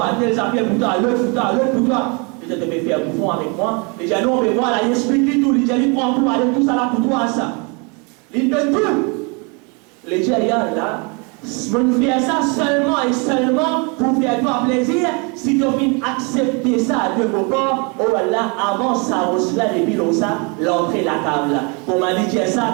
tel ça fait pour toi, l'autre pour toi, l'autre pour toi. Je te fais faire bouffon avec moi. Les gens, on veut voir là, il explique tout, les gens, ils prennent tout, allez, tout ça là pour toi, ça. Ils donnent tout. Les gens, là, on fait ça seulement et seulement pour faire toi plaisir. Si tu viens accepter ça de vos corps, oh là, avant ça, Rosla, depuis ça, l'entrée la table. Pour m'a dit ça,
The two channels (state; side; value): quieter; left; 32.5 dB